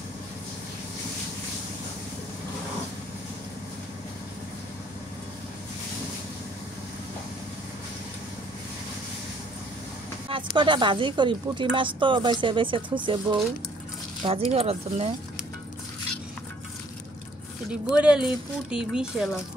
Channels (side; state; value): both; normal; correlation 0.61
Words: মাছ কটা ভাজি করি পুঁটি মাছ তো বেছে বেছে থুছে বউ ভাজি করার জন্য এটি বরেলি পুটি বিশাল